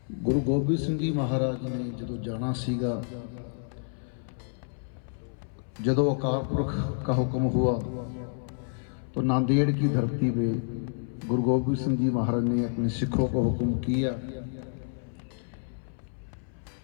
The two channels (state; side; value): silent; right; 59 dB below the other